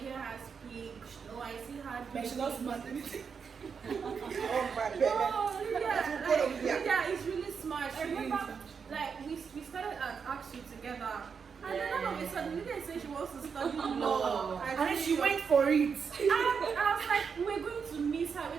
her speak, I see her. But she loves smart anything. Oh my God. Lydia is really smart. I remember, like we started at AXU together. And then all of a sudden, Lydia said she wants to study law. And then she went for it. And I was like, we're going to miss her.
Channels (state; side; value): quieter; left; 6.1 dB